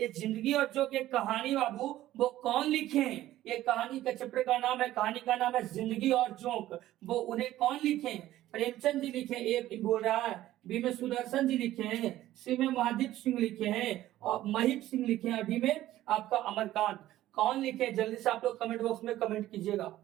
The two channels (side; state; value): left; quieter; 14.4 dB